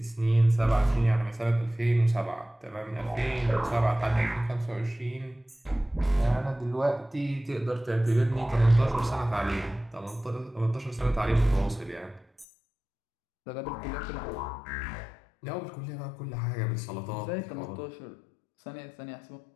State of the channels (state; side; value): drops out; right; at 12.5 s